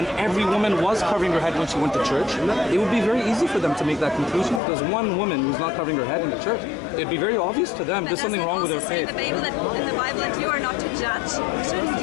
every woman was covering her head when she went to church, it would be very easy for them to make that conclusion. Because one woman who's not covering her head in the church, it'd be very obvious to them there's something wrong with her faith. In the Bible that you are not to judge. Shouldn't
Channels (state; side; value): drops out; right; at 4.6 s